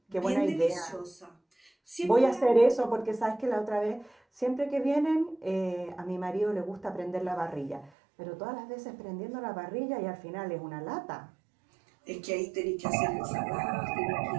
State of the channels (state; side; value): drops out; left; at 7.9 s